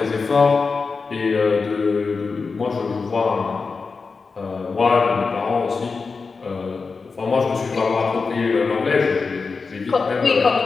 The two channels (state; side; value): quieter; right; 4.6 dB